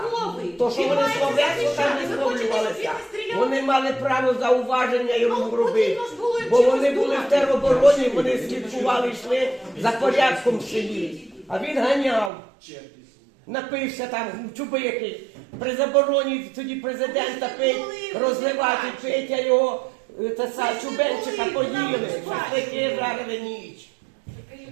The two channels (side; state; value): left; drops out; at 12.3 s